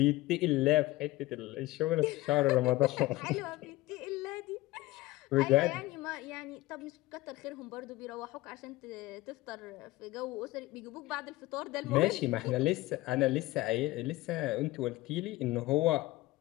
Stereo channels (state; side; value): quieter; right; 18.6 dB